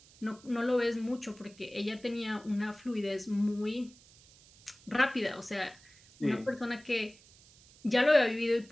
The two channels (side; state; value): right; noise; hiss, 25 dB below the sound